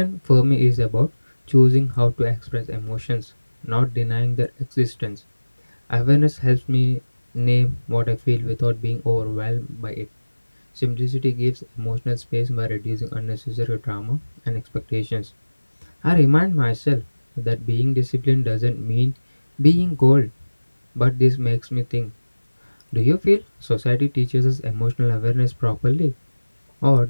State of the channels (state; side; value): inverted; both; correlation -1.00